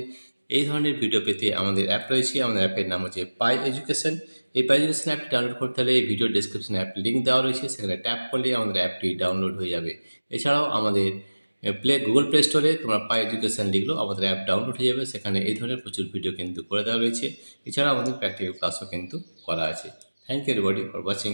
এই ধরনের ভিডিও পেতে আমাদের অ্যাপ রয়েছে। আমাদের অ্যাপের নাম হচ্ছে পাই এডুকেশন। এই পাই এডুকেশন অ্যাপটি ডাউনলোড করতে হলে এই ভিডিও ডেসক্রিপশনে অ্যাপ লিঙ্ক দেওয়া রয়েছে, সেখানে ট্যাপ করলে আমাদের অ্যাপটি ডাউনলোড হয়ে যাবে। এছাড়াও আমাদের গুগল প্লে স্টোরে তোমরা পাই এডুকেশন লিখলেও আমাদের অ্যাপ ডাউনলোড হয়ে যাবে। সেখানে এই ধরনের প্রচুর ভিডিও কিন্তু করে দেওয়া রয়েছে। এছাড়াও আমাদের প্র্যাকটিক্যাল ক্লাসও কিন্তু করা আছে। Thank you everybody for watching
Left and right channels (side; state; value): both; inverted; correlation -1.00